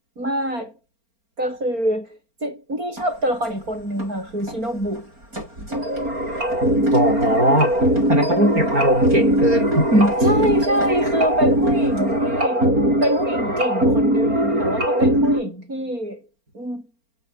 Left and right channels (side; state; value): left; late; 4.4 ms